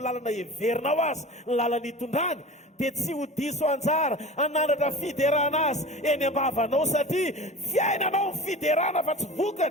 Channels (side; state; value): both; normal; correlation 0.35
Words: lalana heverinao azy ny lalana hitondrany, dia tsy ho diso anjara anandratra fiderana azy eny ambavanao, satria fiainanao ny fiderana fa tsy